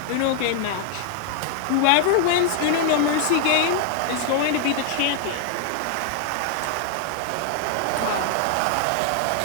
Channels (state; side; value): different; both; correlation 0.00